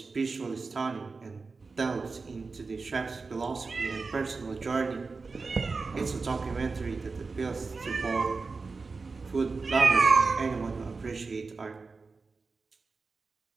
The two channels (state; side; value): quieter; left; 4.2 dB